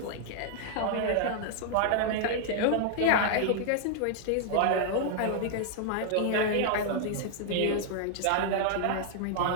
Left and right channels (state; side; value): different; both; correlation 0.00